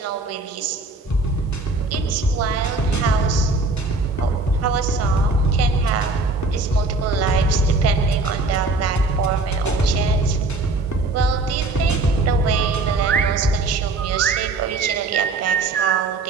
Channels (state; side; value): quieter; left; 3.5 dB